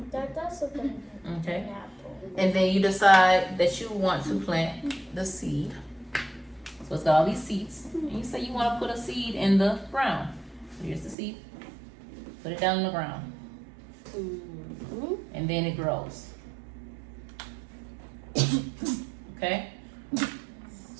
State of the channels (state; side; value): drops out; left; at 11.2 s